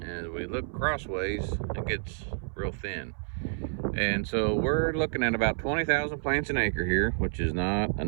As we look crossways, it gets real thin. And so we're looking at about 20,000 plants an acre here, which is not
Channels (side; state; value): left; silent; 58 dB below the other